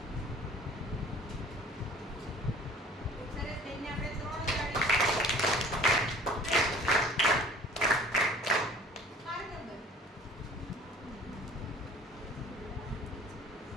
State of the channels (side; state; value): both; normal; correlation 0.49